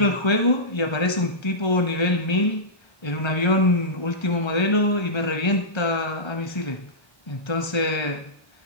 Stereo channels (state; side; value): late; right; 1.3 ms